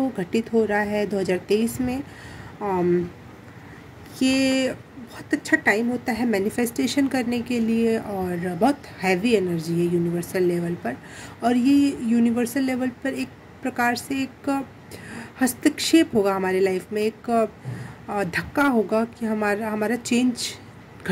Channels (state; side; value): identical; both; correlation 1.00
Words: घटित हो रहा है 2023 में। ये बहुत अच्छा टाइम होता है मैनिफेस्टेशन करने के लिए और बहुत हैवी एनर्जी है यूनिवर्सल लेवल पर। और ये यूनिवर्सल लेवल पर एक प्रकार से एक हस्तक्षेप होगा हमारे लाइफ में, एक धक्का होगा कि हमारा चेंज